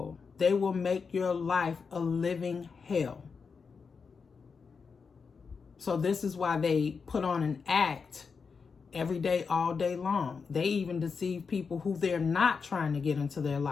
They will make your life a living hell. So this is why they put on an act every day, all day long. They even deceive people who they're not trying to get into their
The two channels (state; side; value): quieter; right; 5.4 dB